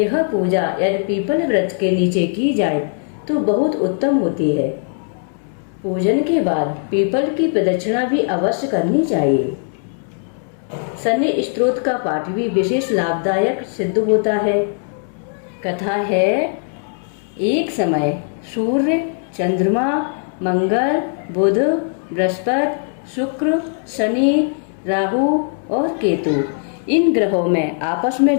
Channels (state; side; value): silent; right; 66 dB below the other